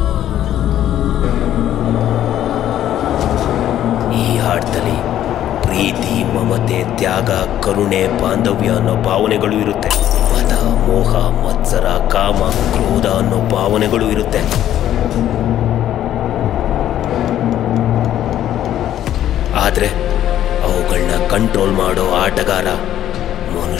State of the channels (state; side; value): quieter; right; 11.7 dB